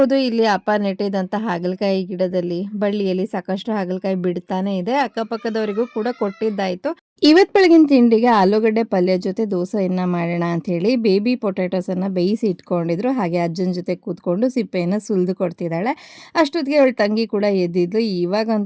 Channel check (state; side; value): identical; both; correlation 1.00